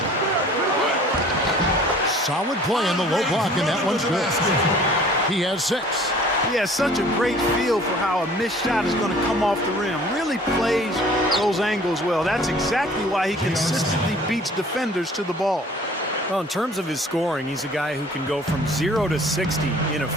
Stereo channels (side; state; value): both; normal; correlation 0.51